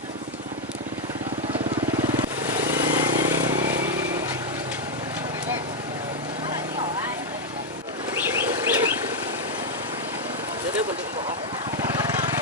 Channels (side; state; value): both; normal; correlation 0.01